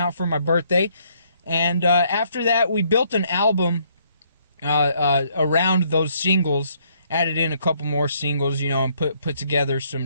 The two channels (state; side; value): inverted; both; correlation -0.68